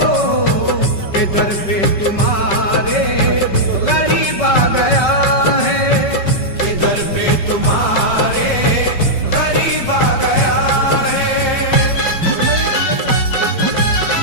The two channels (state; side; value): late; right; 5.2 ms